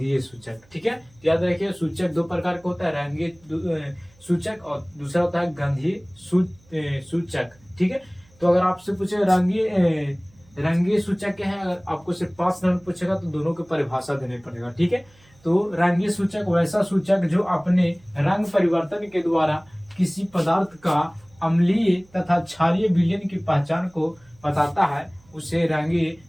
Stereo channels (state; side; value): noise; right; hum, 30 dB below the sound